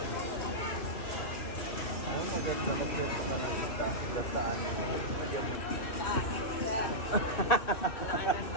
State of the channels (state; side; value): late; right; 2.6 ms